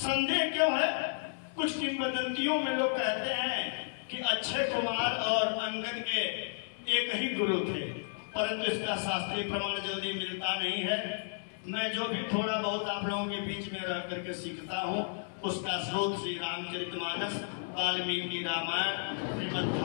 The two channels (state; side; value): silent; right; digital silence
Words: क्यों है? कुछ किंवदंतियों में लोग कहते हैं कि अक्षय कुमार और अंगद के एक ही गुरु थे, परंतु इसका शास्त्रीय प्रमाण जल्दी मिलता नहीं है। मैं जो भी थोड़ा बहुत आप लोगों के बीच में रह करके सीखता हूँ उसका स्रोत श्री रामचरितमानस, वाल्मीकि रामायण, श्रीमद्